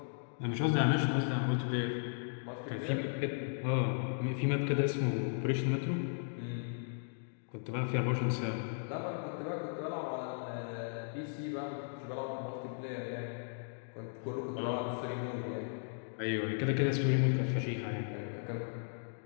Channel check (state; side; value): silent; right; digital silence